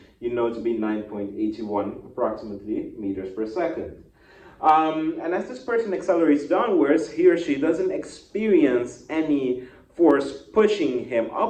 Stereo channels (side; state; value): both; identical; correlation 1.00